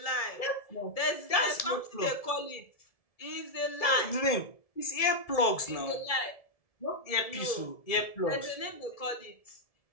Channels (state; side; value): late; right; 1.7 ms